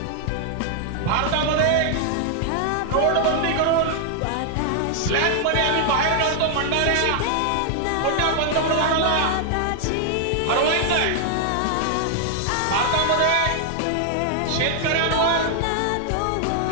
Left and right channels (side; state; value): both; different; correlation 0.00